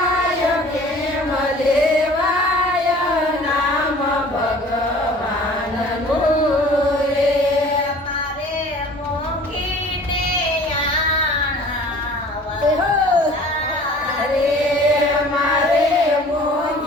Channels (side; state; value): both; normal; correlation 0.48